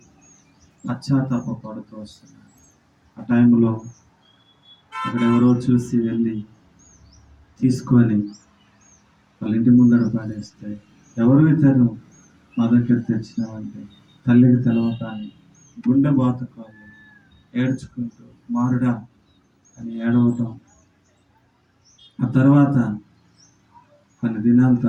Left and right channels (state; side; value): identical; both; correlation 1.00